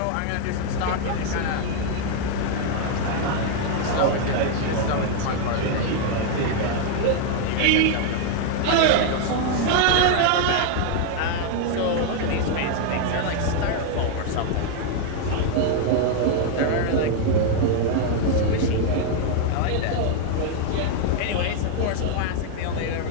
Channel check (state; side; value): different; both; correlation 0.00